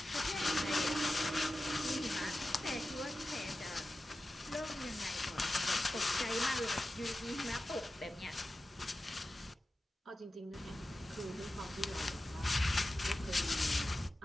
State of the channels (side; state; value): both; normal; correlation 0.93